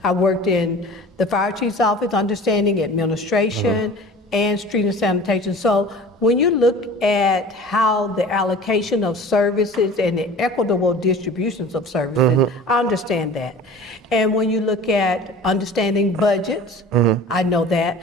I worked in the fire chief's office, understanding administration and street and sanitation. So when you look at how the allocation of services and the equitable distributions of services, I understand that. And when you look at understanding budgets, I know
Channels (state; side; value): normal; both; correlation 0.41